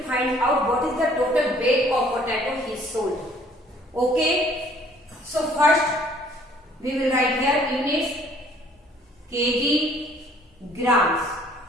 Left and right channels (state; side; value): normal; both; correlation 0.58